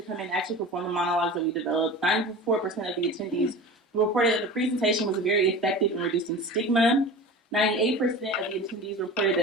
come in and actually perform the monologues that we developed. 94% of the attendees reported that the presentation was very effective in reducing stigma. 98% of the attendees reported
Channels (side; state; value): both; normal; correlation 0.34